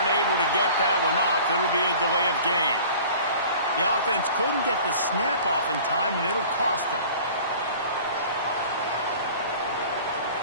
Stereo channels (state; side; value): inverted; both; correlation -0.45